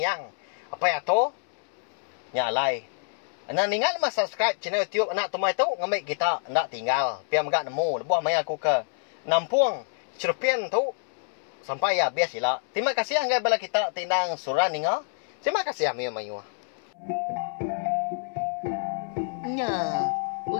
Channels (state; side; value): silent; right; 60 dB below the other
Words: apa ya to nyalai. Anak ningal mas subscribe channel YouTube anak temai tu ngamai kita nak tinggal piam gak nemu lebuah mai aku ke Nampung Cerpen tu sampai ya biasilah. Terima kasih anggai bala kita tindang surah ninga. Terima kasih amia mayu. Nah,